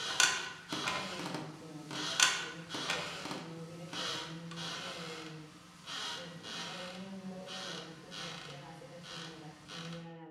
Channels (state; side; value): identical; both; correlation 1.00